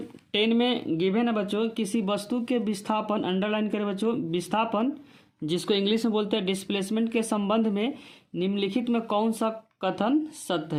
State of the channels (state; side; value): identical; both; correlation 1.00